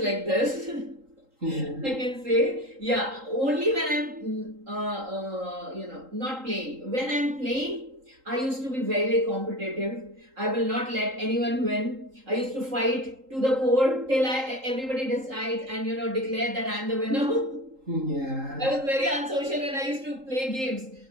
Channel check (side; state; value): left; late; 3.8 ms